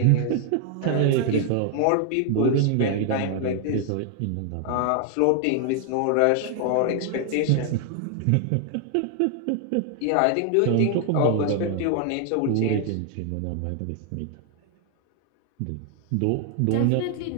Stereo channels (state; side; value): different; both; correlation 0.00